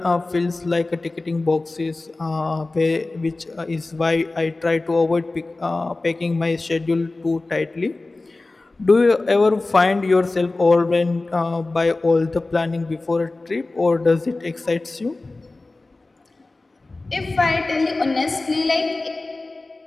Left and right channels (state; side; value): quieter; right; 3.2 dB